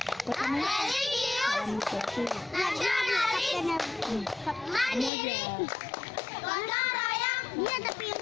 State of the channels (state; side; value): drops out; right; at 5.1 s